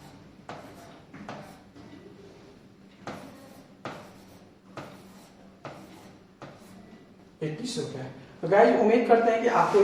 ₹21। तो गाइस उम्मीद करते हैं कि आपको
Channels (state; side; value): identical; both; correlation 1.00